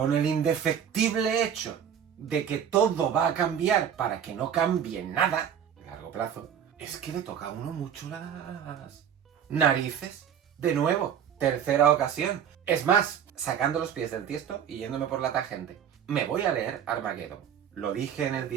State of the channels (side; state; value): left; quieter; 8.7 dB